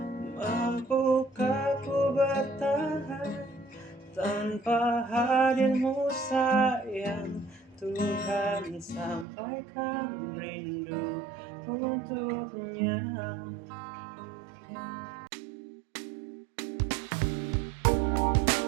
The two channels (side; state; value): left; drops out; at 9.2 s